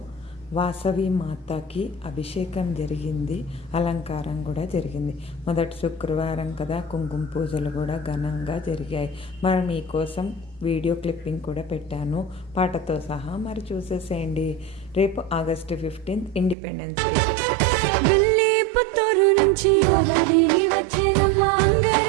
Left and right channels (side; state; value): left; drops out; at 16.6 s